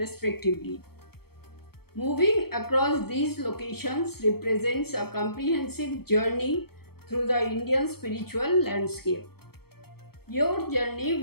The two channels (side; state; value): right; late; 0.95 ms